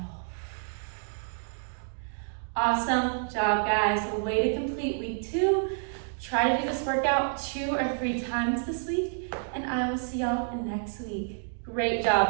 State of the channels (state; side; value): silent; left; digital silence